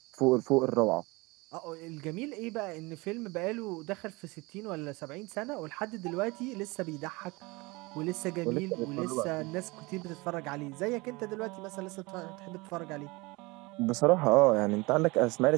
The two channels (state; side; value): quieter; left; 24.5 dB